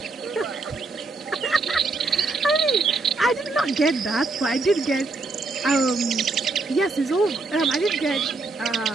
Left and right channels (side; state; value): left; quieter; 3.6 dB